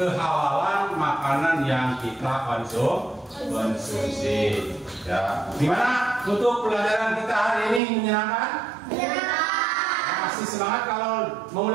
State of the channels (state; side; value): drops out; left; at 7.8 s